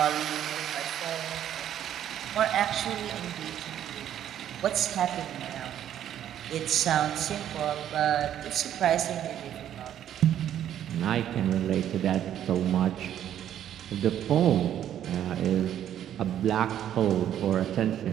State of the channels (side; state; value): left; quieter; 10.7 dB